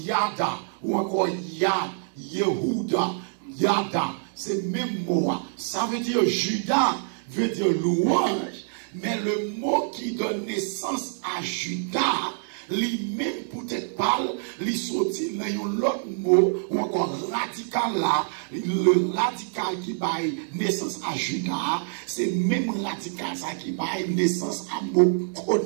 ou encore Yad, Yehuda, Yada, c'est le même mot. Ça veut dire Judas, veut dire louange, mais le mot qui donne naissance à Judas lui-même peut-être parle, lui sorti dans un autre mot, ou encore radical là, le radical qui baille naissance à Judas, c'est même radical ça qui baille naissance à mot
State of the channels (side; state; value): left; silent; digital silence